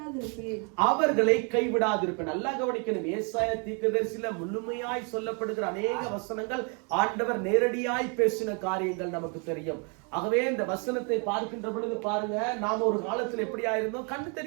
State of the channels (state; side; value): quieter; left; 36.3 dB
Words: கைவிடாதிருப்பேன். நல்லா கவனிக்கணும். ஏசாயா தீர்க்கதரிசியில முழுமையாய் சொல்லப்படுகிற அநேக வசனங்கள் ஆண்டவர் நேரடியாய் பேசின காரியங்கள் நமக்கு தெரியும். ஆகவே இந்த வசனத்தை பார்க்கின்ற பொழுது பாருங்க, நாம ஒரு காலத்துல எப்படியா இருந்தோம்? கண்ணு